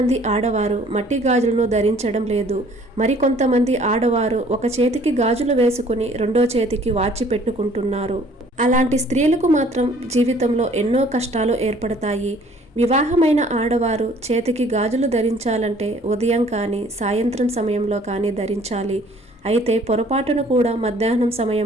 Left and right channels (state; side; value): normal; both; correlation 0.56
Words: ఆడవారు మట్టి గాజులను ధరించడం లేదు. మరికొంతమంది ఆడవారు ఒక చేతికి గాజులు వేసుకుని రెండో చేతికి వాచి పెట్టుకుంటున్నారు. అలాంటి స్త్రీలకు మాత్రం జీవితంలో ఎన్నో కష్టాలు ఏర్పడతాయి. వివాహమైన ఆడవారు చేతికి గాజులు ధరించాలంటే ఉదయం కానీ సాయంత్రం సమయంలో కానీ ధరించాలి. అయితే పొరపాటును కూడా మధ్యాహ్నం